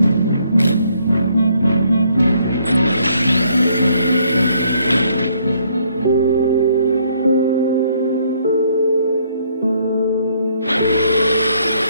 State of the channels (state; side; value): inverted; both; correlation -0.68